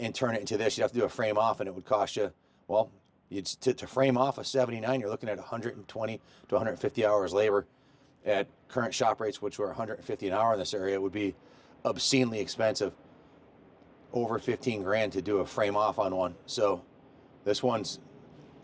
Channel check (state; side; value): identical; both; correlation 1.00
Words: turn it into this. You'd have to do a frame off, and it would cost you, well, to frame off a 79, you're looking at 120 to 150 hours labor. At current shop rates, which were 150 an hour in this area, it would be obscenely expensive. Over 15 grand to do a frame off on one. So this one's